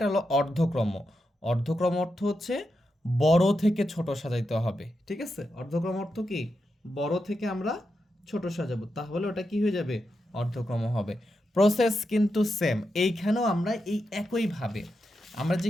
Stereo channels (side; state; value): both; normal; correlation 0.87